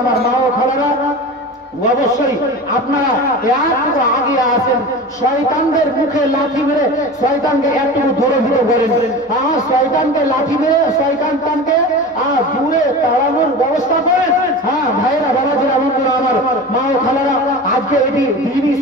আমার মা ও খালারা অবশ্যই আপনারা একটু আগে আসেন, শয়তানদের মুখে লাঠি মেরে শয়তানকে একটু দূরে দূরে করেন। শয়তানকে লাঠি মেরে শয়তানকে দূরে তাড়ানোর ব্যবস্থা করেন। হ্যাঁ ভাইরা বাবাজিরা বন্ধুরা আমার মা ও খালারা, আজকে এটি দিনী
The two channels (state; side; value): normal; both; correlation 0.32